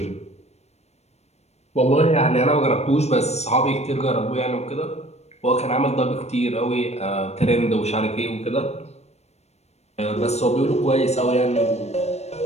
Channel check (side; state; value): right; late; 0.31 ms